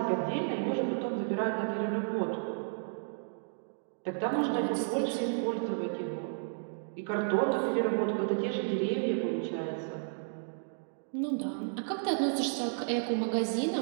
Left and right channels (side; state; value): left; silent; digital silence